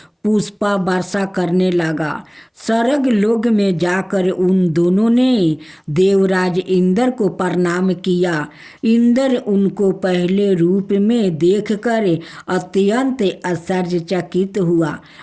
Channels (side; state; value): both; identical; correlation 1.00